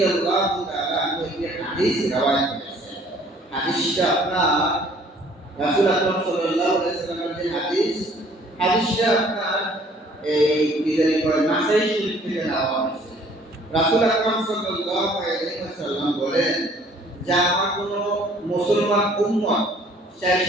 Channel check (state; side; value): normal; both; correlation 0.57